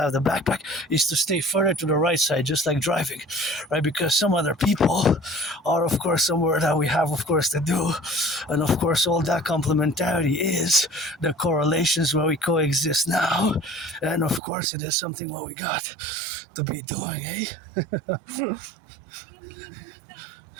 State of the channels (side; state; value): left; drops out; at 14.4 s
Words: have the backpack, is to stay further to the right side, just like driving, right? Because some other people are, of course, somewhere that we have, of course, to do, and of course, all that complementarity is the correlations where we coexist now, and of course, it is something where we got to be doing, eh?